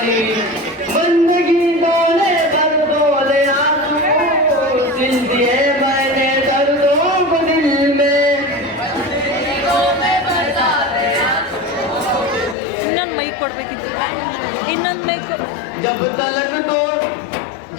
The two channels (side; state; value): right; drops out; at 12.6 s